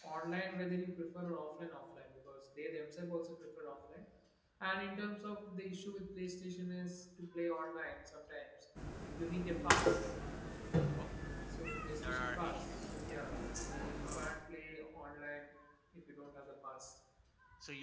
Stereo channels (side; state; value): both; identical; correlation 1.00